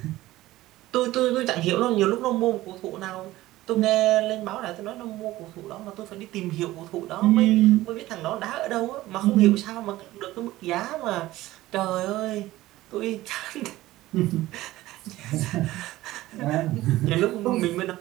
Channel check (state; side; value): quieter; left; 16.7 dB